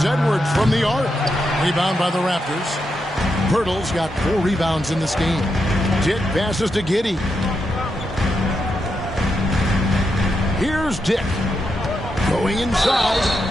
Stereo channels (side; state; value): both; normal; correlation 0.84